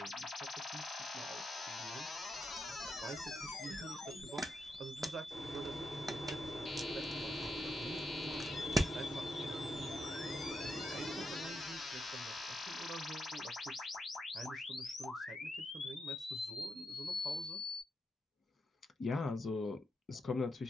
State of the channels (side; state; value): both; normal; correlation 0.83